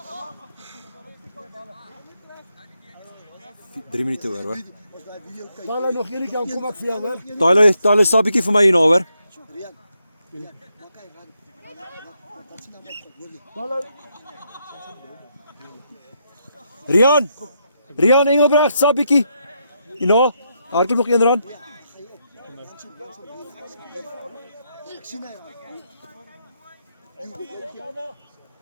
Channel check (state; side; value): inverted; both; correlation -0.79